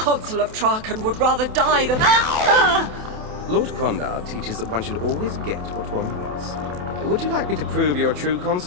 of Traken would rather die than... Lord Quandar teaches that one should always get what one wants. Would you like me to prove you're a true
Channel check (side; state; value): left; late; 28 ms